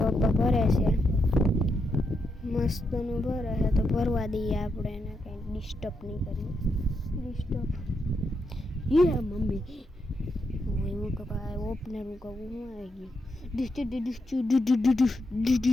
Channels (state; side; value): normal; both; correlation 0.82